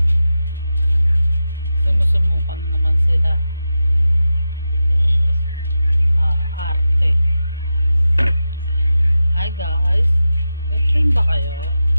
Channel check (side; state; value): both; inverted; correlation -0.91